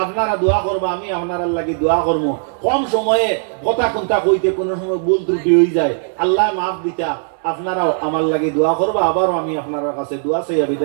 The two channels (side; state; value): left; silent; digital silence